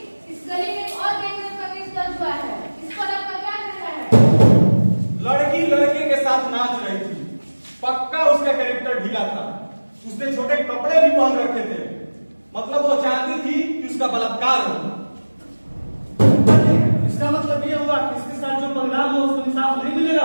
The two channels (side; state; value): both; inverted; correlation -1.00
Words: इस गली में एक और गैंगरेप का केस दर्ज हुआ है। इस पर आपका क्या कहना है? लड़की लड़के के साथ नाच रही थी, पक्का उसका कैरेक्टर ढीला था। उसने छोटे कपड़े भी पहन रखे थे, मतलब वो चाहती थी कि उसका बलात्कार हो। इसका मतलब ये हुआ कि इसके साथ जो परिणाम हो उसको इंसाफ नहीं